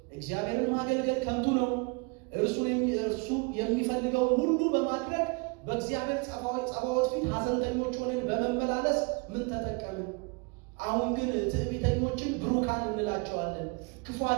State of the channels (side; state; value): left; quieter; 30.9 dB